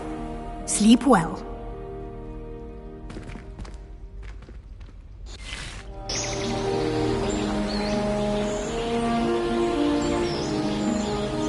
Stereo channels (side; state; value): both; identical; correlation 1.00